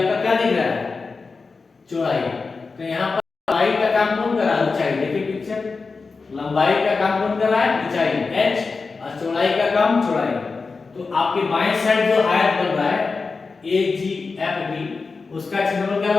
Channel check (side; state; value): right; quieter; 4.4 dB